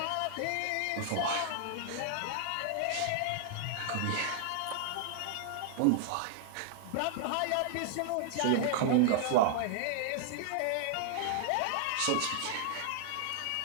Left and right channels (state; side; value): different; both; correlation -0.01